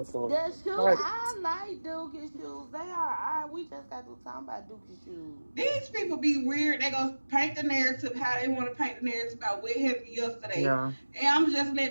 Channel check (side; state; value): both; inverted; correlation -1.00